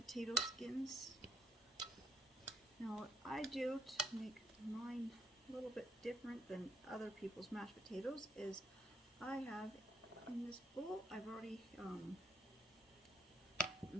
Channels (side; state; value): both; normal; correlation 0.72